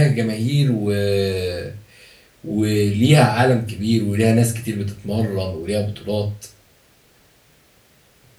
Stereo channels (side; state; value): both; identical; correlation 1.00